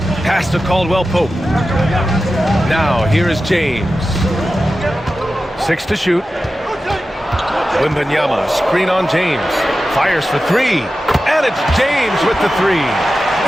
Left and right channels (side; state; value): both; normal; correlation 0.93